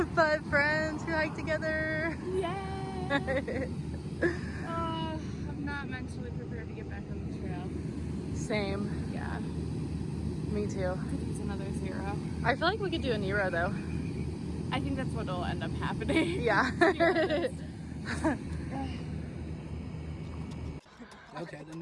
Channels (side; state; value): both; identical; correlation 1.00